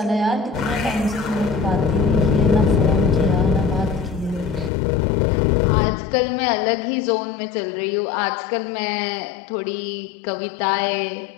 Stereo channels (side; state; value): right; drops out; at 4.7 s